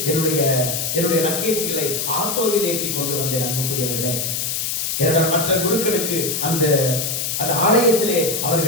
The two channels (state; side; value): noise; left; hiss, 1 dB below the sound